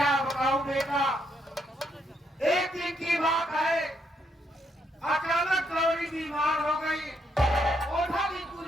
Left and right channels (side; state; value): both; normal; correlation 0.75